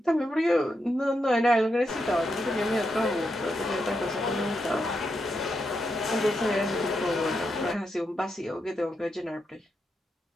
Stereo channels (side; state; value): both; normal; correlation 0.84